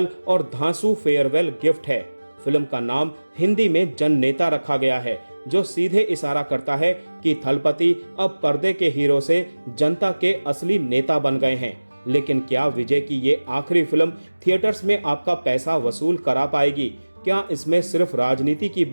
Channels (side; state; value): both; inverted; correlation -1.00